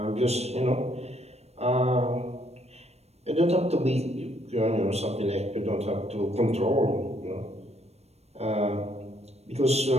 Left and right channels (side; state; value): left; late; 0.31 ms